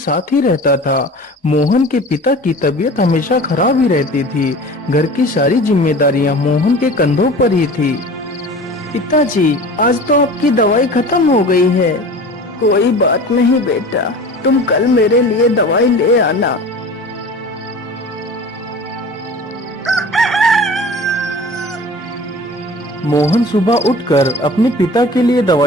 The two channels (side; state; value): both; normal; correlation 0.39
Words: ही रहता था। मोहन के पिता की तबीयत हमेशा खराब ही रहती थी। घर की सारी जिम्मेदारियां मोहन के कंधों पर ही थी। पिताजी, आज तो आपकी दवाई खत्म हो गई है। कोई बात नहीं बेटा, तुम कल मेरे लिए दवाई ले आना। मोहन सुबह उठकर अपने पिता के लिए